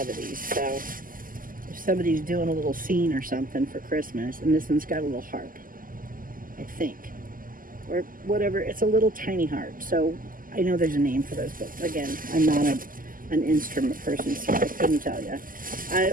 of these, so if somebody's doing a little scene or something for Christmas, and this one's got a little harp, I think, or whatever. It's a little tiny harp, so I know there's a name for those, but again, I'm not an instrument person, so I couldn't tell you.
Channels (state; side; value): late; left; 0.41 ms